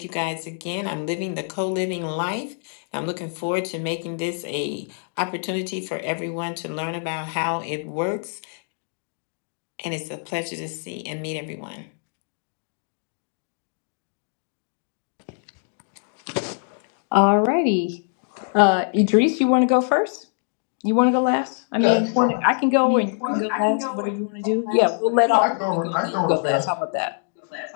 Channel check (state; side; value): silent; right; 62 dB below the other